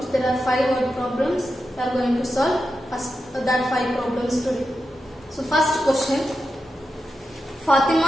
There are 5 word problems. We are going to solve that 5 problems today. So first question.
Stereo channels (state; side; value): normal; both; correlation 0.89